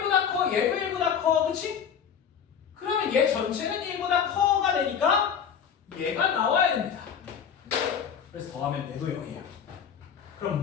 커, 얘도 1보다 커, 그치? 그러면 얘 전체는 1보다 커가 되니까 얘가 나와야 됩니다. 그래서 더하면 얘도 0이에요.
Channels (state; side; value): quieter; right; 7.6 dB